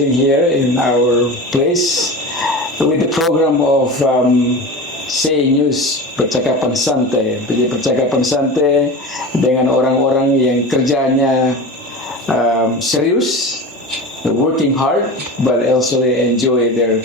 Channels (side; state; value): both; normal; correlation 0.30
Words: here in our place with the program of Say News, Percakapan Santai. Jadi percakapan santai dengan orang-orang yang kerjanya serius, working hard, but also they enjoy their